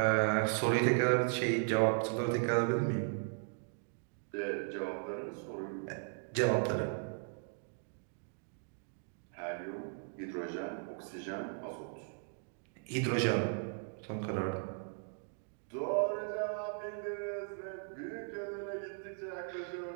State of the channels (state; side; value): silent; left; 53 dB below the other